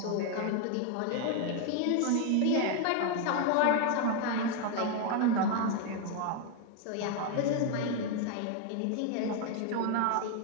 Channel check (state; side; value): different; both; correlation 0.01